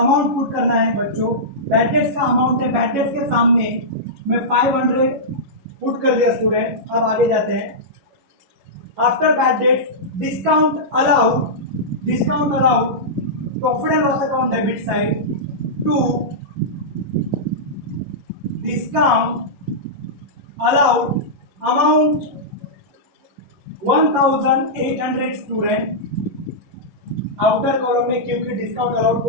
पुट करना है बच्चों। बैड डेट्स का अमाउंट है, बैड डेट्स के सामने मैं 500 पुट कर दिया स्टूडेंट। अब आगे जाते हैं। After bad debts discount allowed profit and loss account debit side to discount allowed amount 1800 student. Outer column में क्योंकि डिस्काउंट अलाउड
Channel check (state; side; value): late; left; 11 ms